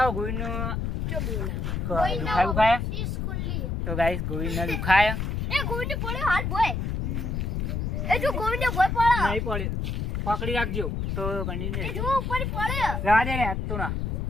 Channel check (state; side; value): noise; left; rumble, 1 dB below the sound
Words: ગોવિંદનો દુખાયા. તો ગાઈસ ગોવિંદને દુખાયા નહીં પડે, પકડી રાખજો. તો કન્ટિન્યુ રહેજો. જવા દે રે હાથ તો ના.